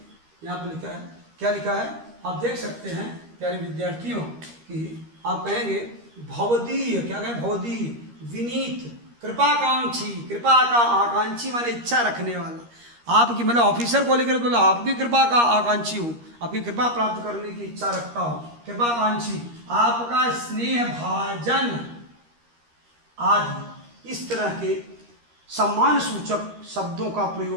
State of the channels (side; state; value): left; late; 13 ms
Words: यहाँ पर लिखा है, क्या लिखा है आप देख सकते हैं प्यारे विद्यार्थियों कि आप कहेंगे भवदीय, क्या कहें, भवदीय, विनीत, कृपाकांक्षी, कृपा का आकांक्षी माने इच्छा रखने वाला, आपकी मतलब ऑफिसर को लेकर तो आपकी कृपा का आकांक्षी हूँ, आपकी कृपा प्राप्त करने की इच्छा रखता हूँ, कृपाकांक्षी, आपका स्नेह भाजन आदि। इस तरह के सम्मान सूचक शब्दों का